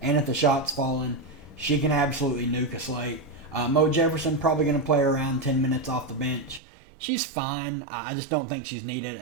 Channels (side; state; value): left; drops out; at 6.6 s